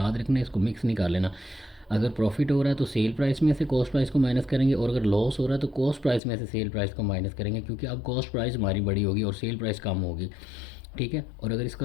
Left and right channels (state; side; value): drops out; right; at 6.2 s